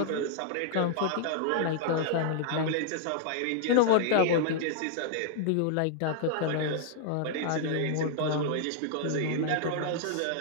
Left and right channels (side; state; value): both; different; correlation -0.01